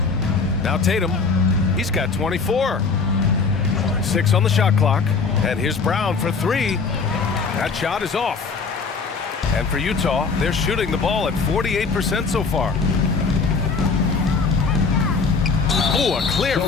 Now Tatum. He's got 24. 6 on the shot clock. And here's Brown for 3. That shot is off. And for Utah, they're shooting the ball at 48% so far. Oh, a clear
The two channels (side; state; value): right; quieter; 4.7 dB